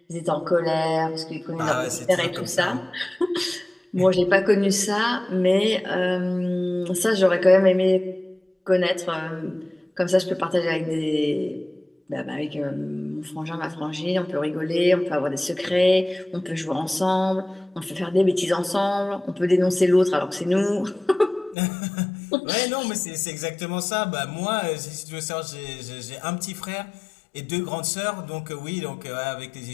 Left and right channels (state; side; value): drops out; right; at 21.6 s